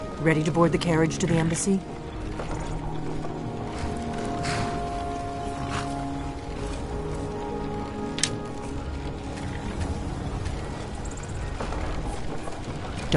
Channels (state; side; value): identical; both; correlation 1.00